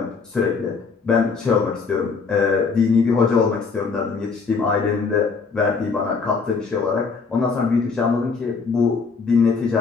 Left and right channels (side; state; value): right; quieter; 4.9 dB